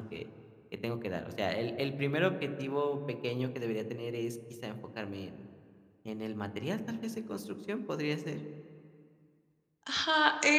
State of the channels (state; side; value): identical; both; correlation 1.00